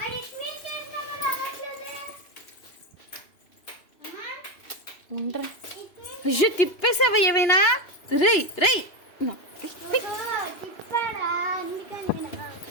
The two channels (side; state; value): right; late; 2.9 ms